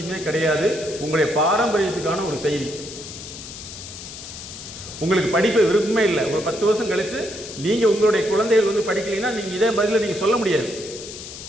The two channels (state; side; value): noise; left; hiss, 12 dB below the sound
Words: கிடையாது, உங்களுடைய பாரம்பரியத்துக்கான ஒரு செய்தி. உங்களுக்கு படிப்பு விருப்பமே இல்லை, ஒரு 10 வருஷம் கழித்து நீங்கள் உங்களுடைய குழந்தைகள் வந்து படிக்கலைன்னா நீங்கள் இதே பதில் நீங்கள் சொல்ல முடியாது.